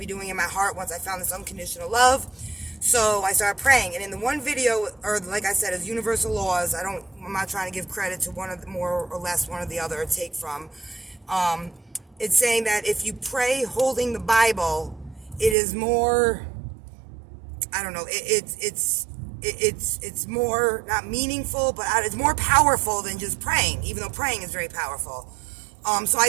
doing in my heart once I found this unconditional love. So I started praying, and in the one video, or like I said, is universal laws. I'm not trying to give credit to one of the more or less one or the other, or take from. It's saying that if you pray holding the Bible, it is more, I don't know, it's more, not meaningful, but it's more powerful than just praying, even though praying is very powerful. So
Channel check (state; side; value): drops out; left; at 15.6 s